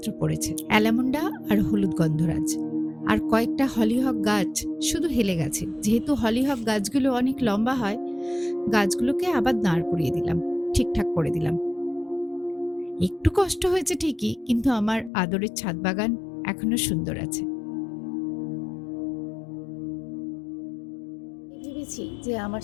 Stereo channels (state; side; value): drops out; right; at 15.1 s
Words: পড়েছে, অ্যালামন্ডা আর হলুদ গন্ধরাজ। আর কয়েকটা হলিহক গাছ শুধু হেলে গেছে। যেহেতু হলিহক গাছগুলো অনেক লম্বা হয়, গাছগুলোকে আবার দাঁড় করিয়ে দিলাম, ঠিকঠাক করে দিলাম। একটু কষ্ট হয়েছে ঠিকই, কিন্তু আমার আদরের ছাদ বাগান এখনো সুন্দর আছে। ভেবেছি যে আমার